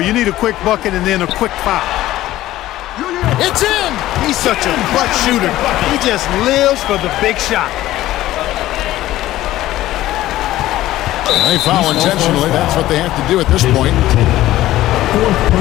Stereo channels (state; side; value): quieter; right; 15.1 dB